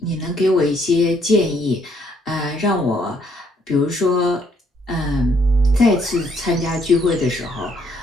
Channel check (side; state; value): both; normal; correlation 0.68